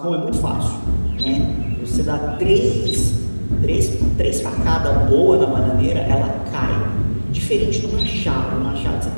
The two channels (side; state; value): both; inverted; correlation -1.00